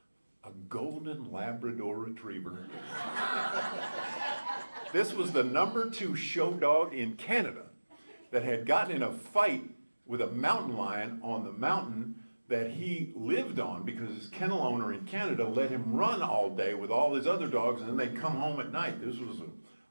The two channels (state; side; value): inverted; both; correlation -1.00